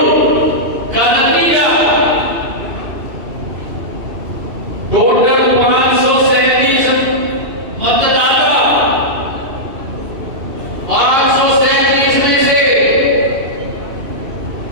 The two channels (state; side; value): late; left; 2.7 ms